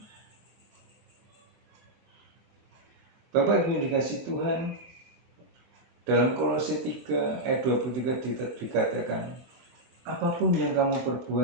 Bapak Ibu yang dikasihi Tuhan, dalam Kolose 3 ayat 23 dikatakan, apapun yang kamu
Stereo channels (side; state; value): left; late; 24 ms